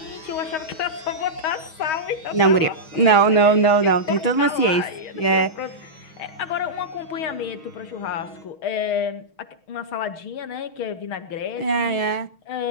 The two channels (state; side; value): late; right; 6.3 ms